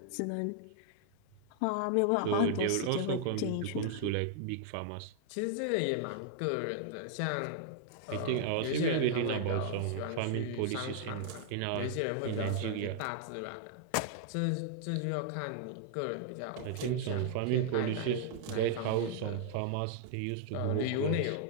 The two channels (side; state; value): both; different; correlation 0.00